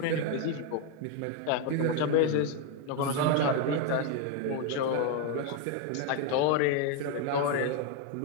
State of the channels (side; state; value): both; different; correlation 0.01